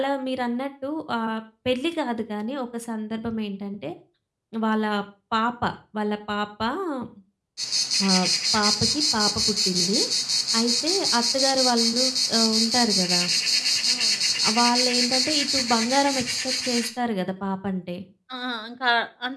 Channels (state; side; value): identical; both; correlation 1.00